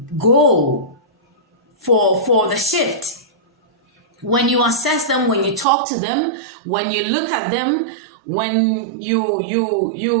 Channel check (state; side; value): drops out; left; at 5.7 s